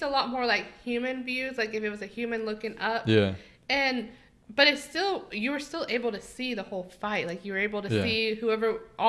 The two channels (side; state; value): both; identical; correlation 1.00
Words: a lot more like human views, like if it was a human looking up. Yeah. But it's still, you were still able to see the whole fight. Like you were able to see